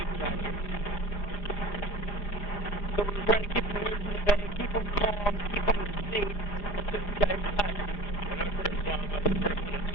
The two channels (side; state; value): right; late; 4.9 ms